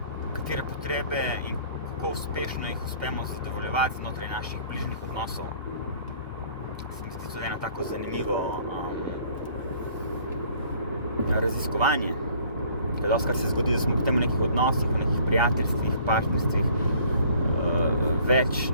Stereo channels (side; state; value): both; inverted; correlation -0.55